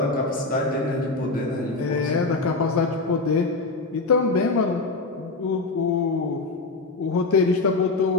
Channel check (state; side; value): quieter; right; 3.6 dB